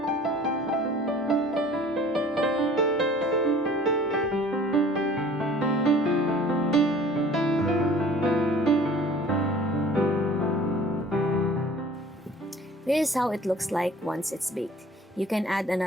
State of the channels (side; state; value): both; normal; correlation 0.48